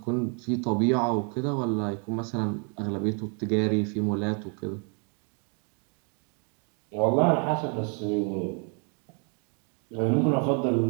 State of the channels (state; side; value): quieter; left; 38.5 dB